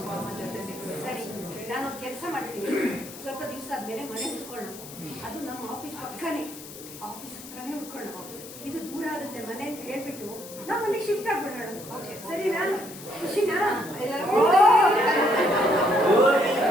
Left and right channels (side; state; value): left; noise; hiss, 14 dB below the sound